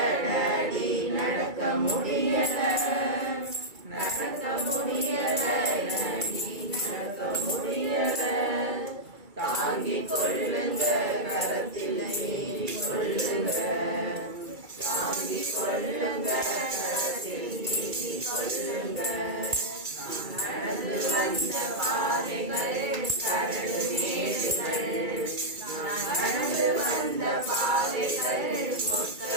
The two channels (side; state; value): left; late; 2.3 ms